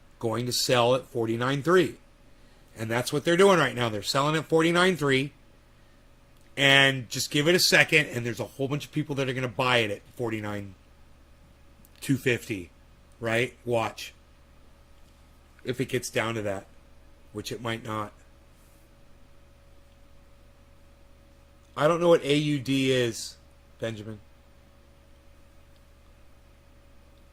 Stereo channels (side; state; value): both; identical; correlation 1.00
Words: going to sell at 49.3. And that's what they're doing right now. They're selling at 49.3. And just give it a second, and there's a whole bunch of people that are going to buy it at 49.250, right? Watch. If it gets down to that, which it might not. I don't know what AUD is, Benjamin.